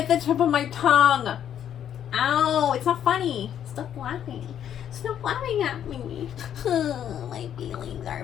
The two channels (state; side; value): quieter; right; 9.8 dB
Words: the tip of my tongue. Ow, it's not funny. Stop laughing. Stop laughing at me. My feelings